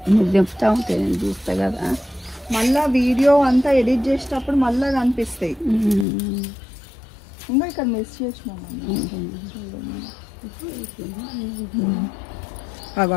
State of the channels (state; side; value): drops out; right; at 6.1 s